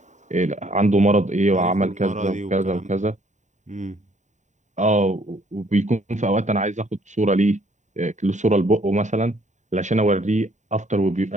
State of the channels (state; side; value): late; left; 0.34 ms